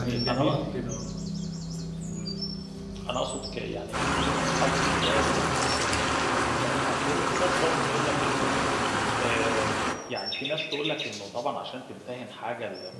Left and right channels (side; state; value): both; identical; correlation 1.00